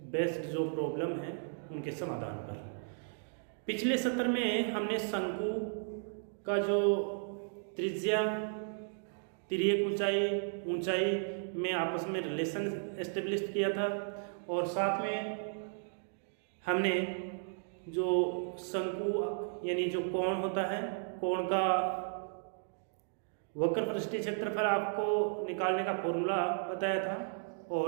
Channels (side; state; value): left; silent; digital silence